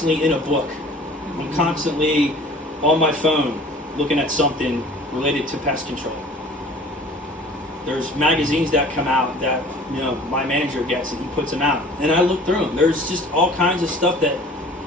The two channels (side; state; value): both; normal; correlation 0.47